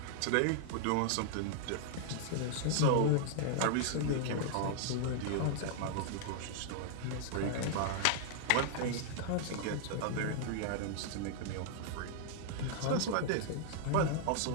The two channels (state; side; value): different; both; correlation 0.00